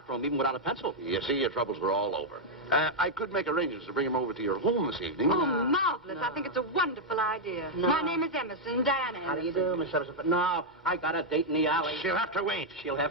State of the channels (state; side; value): normal; both; correlation -0.02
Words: even without a pencil. You see, your troubles were all over. I could make arrangements to bring him over to your home this evening. Oh, marvelous. I think it's a wonderful idea. No. My name is Emerson, Diana Emerson. How do you do, Miss Emerson? But no, I got a date in the alley. She'll have to wait. She'll